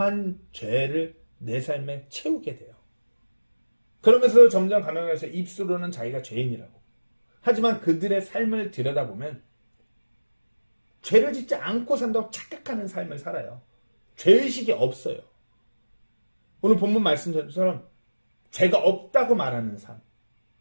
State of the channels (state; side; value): inverted; both; correlation -1.00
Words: 죄를 내 삶에 채우게 돼요. 그러면서 점점 가면서 입술로는 자기가 죄인이라고. 하지만 그들의 삶을 들여다보면 죄를 짓지 않고 산다고 착각하는 삶을 살아요. 죄의식이 없어요. 오늘 본문 말씀처럼 죄가 없다고 말하는 삶,